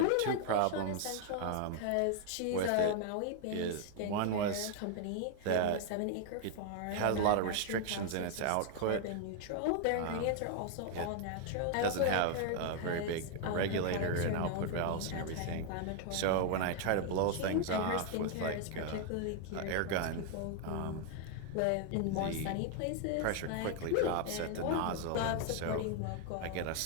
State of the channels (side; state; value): both; different; correlation 0.00